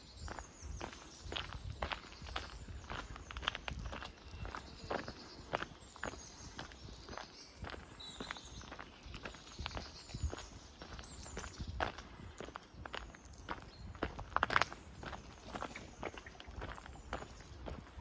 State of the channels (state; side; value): identical; both; correlation 1.00